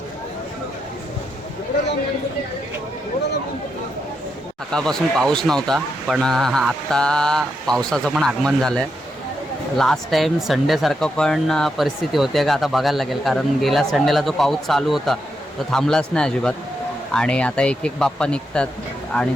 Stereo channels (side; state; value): both; normal; correlation 0.83